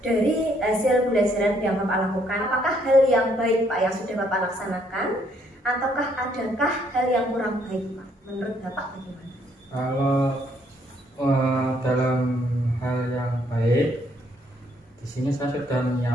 dari hasil pembelajaran yang Bapak lakukan, apakah hal yang baik Pak yang sudah Bapak laksanakan, ataukah adakah hal yang kurang baik Pak? Menurut Bapak bagaimana? Kalau dalam hal yang baik, di sini saya sudah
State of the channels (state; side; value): normal; both; correlation 0.69